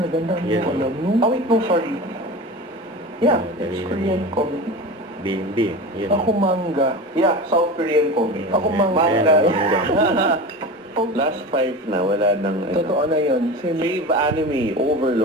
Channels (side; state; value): both; normal; correlation 0.30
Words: Ang dami mo alam, no? Oh, wait, no, sorry. Yeah, it's Korean comic. Bimbi. Yan. Ako manga. Yeah, South Korean comic. Ako manga. Last 5 na, wala nang ano. Totoo na yun. Fave anime,